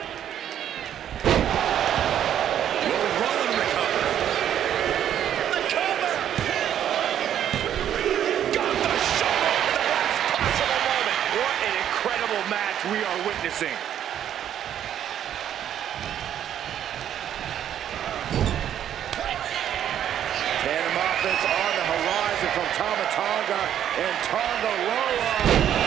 Will Rowan recover? The cover. Got the shoulder at the last possible moment. What an incredible match we are witnessing. offense on the horizon from Tama Tonga and Tonga Loa.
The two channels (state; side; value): quieter; left; 10.2 dB